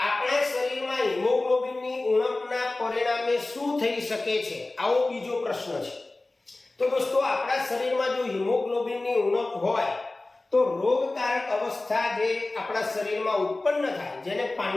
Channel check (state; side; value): quieter; right; 3.0 dB